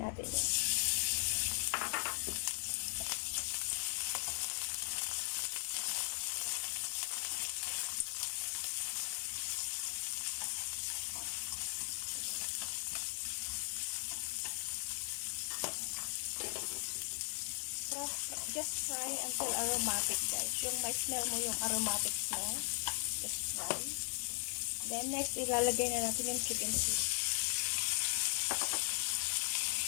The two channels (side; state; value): right; silent; digital silence